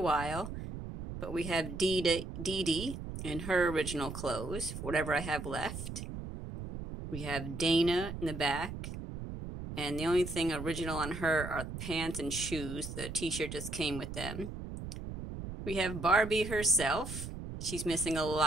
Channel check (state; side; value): noise; right; rumble, 8 dB below the sound